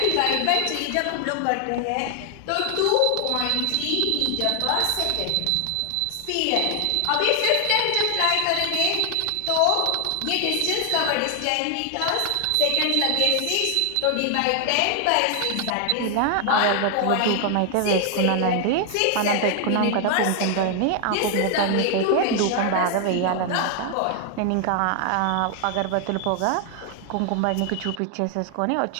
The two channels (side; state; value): both; different; correlation 0.00